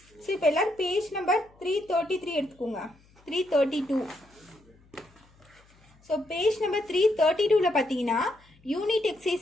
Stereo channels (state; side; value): noise; left; hum, 30 dB below the sound